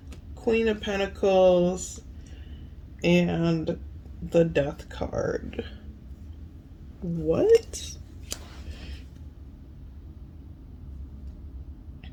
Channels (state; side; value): identical; both; correlation 1.00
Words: Queen of Pentacles, and the Death card. What?